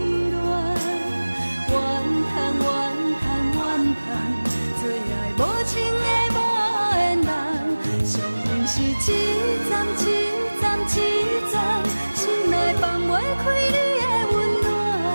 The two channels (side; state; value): both; inverted; correlation -1.00